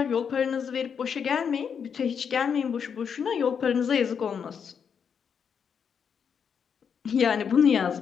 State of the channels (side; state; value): right; quieter; 7.0 dB